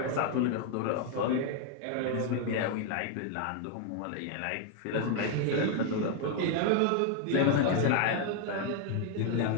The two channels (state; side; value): different; both; correlation 0.00